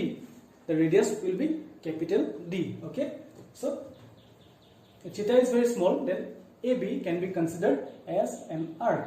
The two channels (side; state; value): both; identical; correlation 1.00